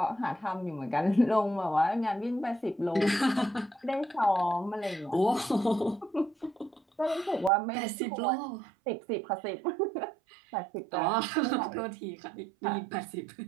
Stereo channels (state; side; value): drops out; left; at 7.5 s